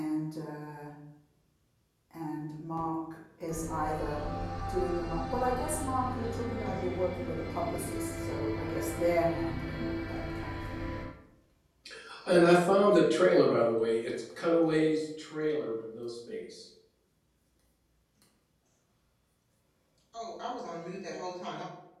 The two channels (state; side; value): identical; both; correlation 1.00